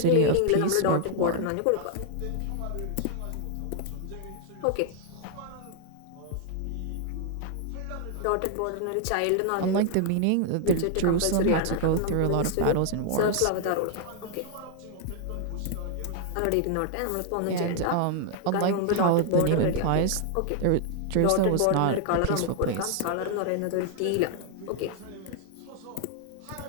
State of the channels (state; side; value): different; both; correlation 0.00